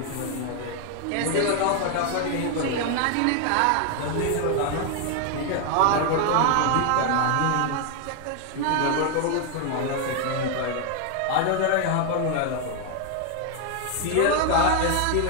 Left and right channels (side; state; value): both; different; correlation 0.01